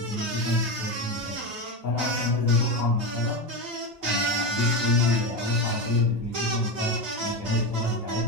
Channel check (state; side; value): normal; both; correlation 0.16